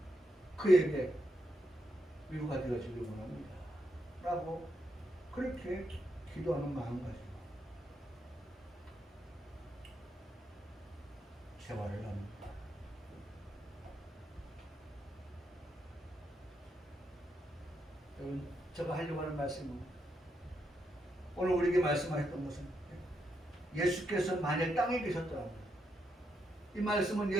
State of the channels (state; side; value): normal; both; correlation 0.81